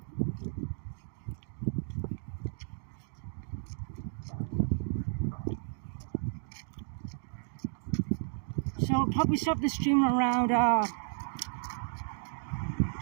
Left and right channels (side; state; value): left; silent; digital silence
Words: So I'll probably stop the stream around